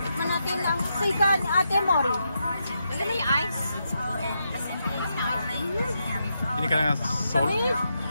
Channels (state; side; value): inverted; both; correlation -0.83